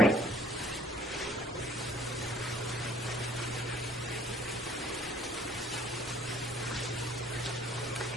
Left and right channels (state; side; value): normal; both; correlation 0.58